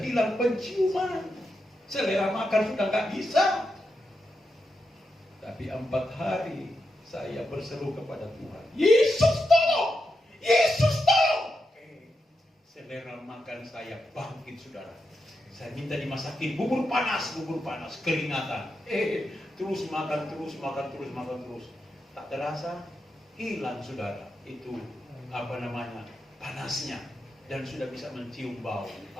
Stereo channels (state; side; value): normal; both; correlation 0.86